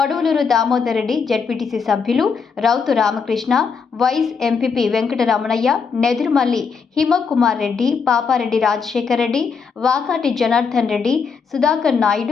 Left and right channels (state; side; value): quieter; right; 5.6 dB